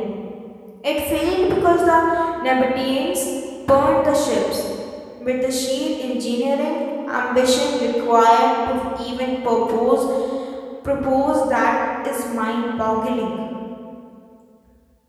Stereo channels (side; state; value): both; identical; correlation 1.00